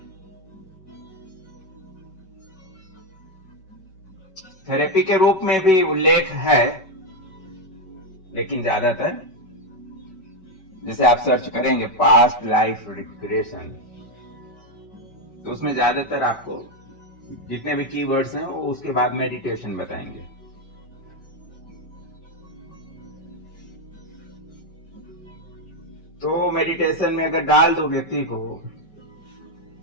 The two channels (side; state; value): right; late; 5.2 ms